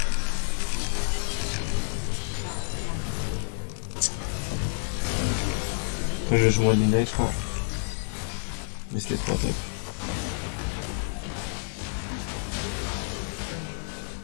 Moi je vais jouer à Midnight je crois. Mais c'était trop top.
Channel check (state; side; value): silent; right; 59 dB below the other